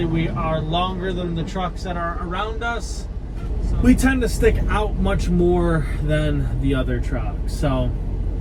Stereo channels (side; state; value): both; identical; correlation 1.00